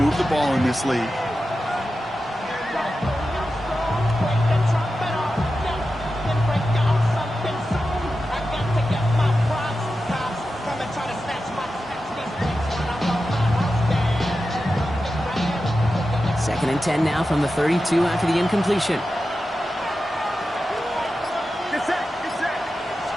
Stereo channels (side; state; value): both; normal; correlation 0.92